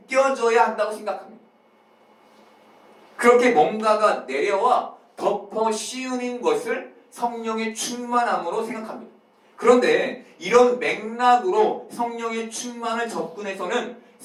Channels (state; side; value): identical; both; correlation 1.00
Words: 한다고 생각합니다. 그렇게 뭔가가 내려와 덮어 씌우는 것을 성령의 충만함으로 생각합니다. 그런데 이런 맥락으로 성령의 충만을 접근해서는